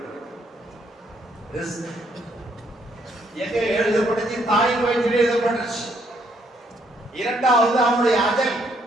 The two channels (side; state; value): both; normal; correlation 0.71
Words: எங்க எழுதப்பட்டுச்சு? தாயின் வயிற்றில் எழுதப்பட்டுச்சு. இரண்டாவது அவனுடைய அஜல்,